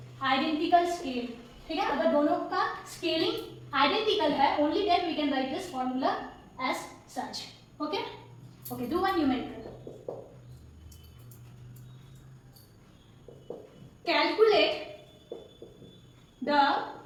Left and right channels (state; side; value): identical; both; correlation 1.00